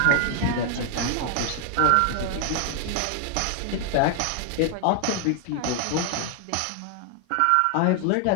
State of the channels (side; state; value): both; different; correlation 0.00